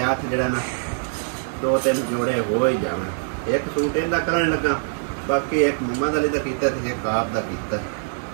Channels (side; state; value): left; silent; digital silence